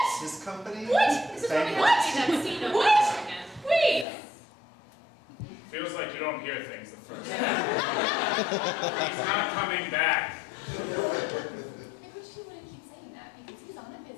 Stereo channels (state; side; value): drops out; right; at 4.0 s